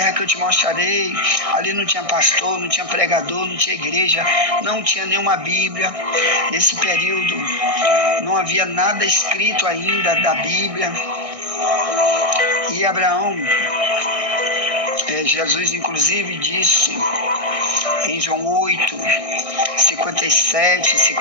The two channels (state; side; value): late; left; 1.6 ms